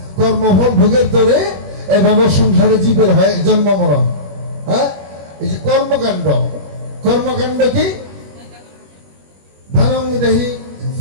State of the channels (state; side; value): late; left; 21 ms